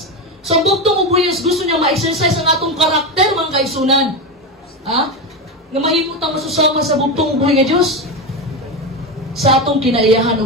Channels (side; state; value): both; normal; correlation 0.16